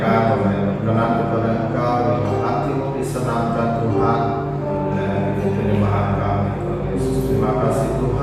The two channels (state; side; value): identical; both; correlation 1.00